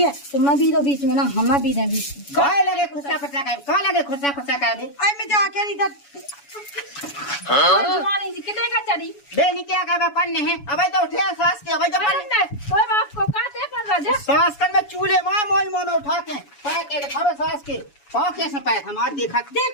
तुम भी तो बीच में ना हम भी ना बीच में काय लगे खुशा खुशा का का लगे खुशा का दे आई मैं जाके इधर जुआनी जी कितने का चढ़ी बे नहीं क्या का पन्ने हैं अबे तो उठे सास के अबे तो पन्ने कोई बाप को काटे कर राजा सास कर में चूल्हे मां मोई मोन उठा के पैर के खबे सास के पा कैसे पैर हम आज देखा देख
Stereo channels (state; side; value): late; right; 7.1 ms